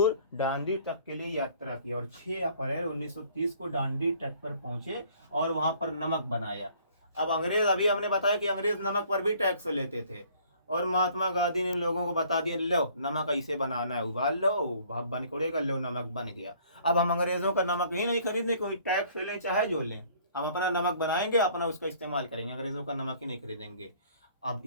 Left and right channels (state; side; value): inverted; both; correlation -0.57